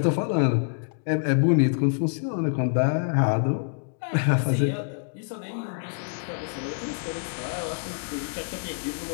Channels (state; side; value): silent; right; digital silence